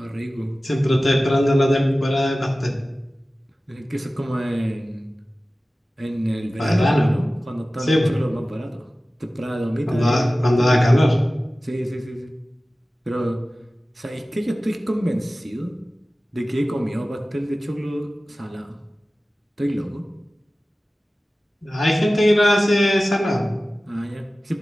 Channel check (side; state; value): both; normal; correlation 0.96